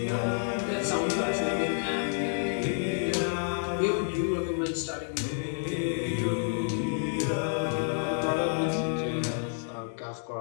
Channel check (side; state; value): right; silent; digital silence